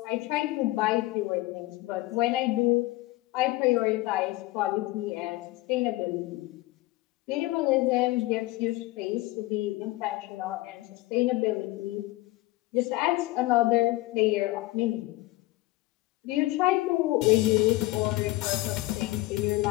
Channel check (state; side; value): quieter; right; 19.3 dB